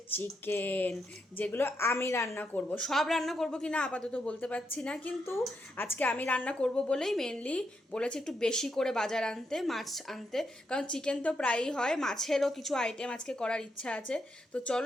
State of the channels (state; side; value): normal; both; correlation 0.81